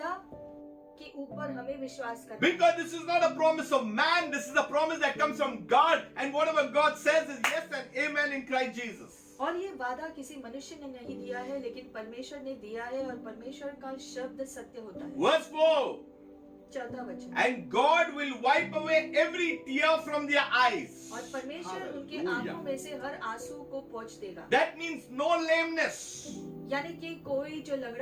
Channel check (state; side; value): identical; both; correlation 1.00